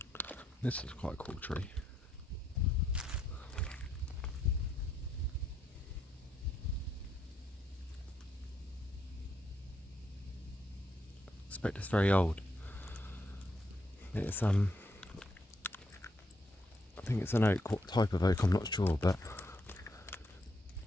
This is quite a cool tree. I suspect it's very old. It's I think it's an oak. What type of oak, I'm not sure, but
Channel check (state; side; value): normal; both; correlation 0.77